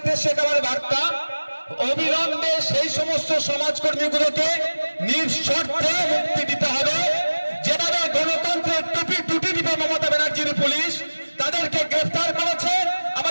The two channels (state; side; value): inverted; both; correlation -1.00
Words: এটা আমার বার্তা, অবিলম্বে সেই সমস্ত সমাজকর্মীগুলোকে নিঃশর্তে মুক্তি দিতে হবে। যেভাবে গণতন্ত্রের টুটি দিবে মমতা ব্যানার্জির পুলিশ, তাদেরকে গ্রেফতার করেছে